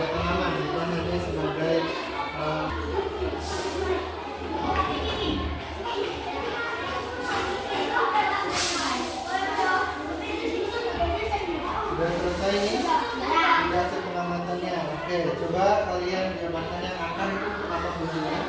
Oke, coba kalian jabarkan yang akan itu untuk apa fungsinya?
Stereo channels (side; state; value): both; identical; correlation 1.00